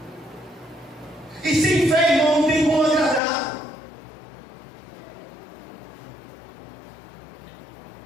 E sem fé, irmão, não tem como agradar.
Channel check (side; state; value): right; drops out; at 3.2 s